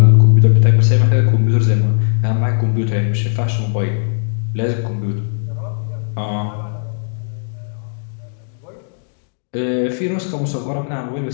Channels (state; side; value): silent; right; digital silence